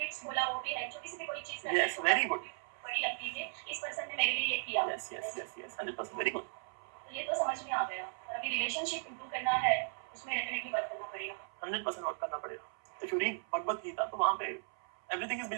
बोला वो भी है, छोटी सी भी कोई चीज करते Yes, very good. बड़ी लगती है कि इस पर्सन ने मेरे लिए ये किया। Yes yes yes yes 100% very good. तो ये तो समझ में आ गया। और अभी रिलेशनशिप इंप्रूव करना है, उसमें डेफिनेटली वर्क करना पड़ेगा। 100% वर्क करना पड़ेगा। If you read Bhagavad Gita तो वहां पे एवरीथिंग इज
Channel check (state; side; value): silent; left; 53 dB below the other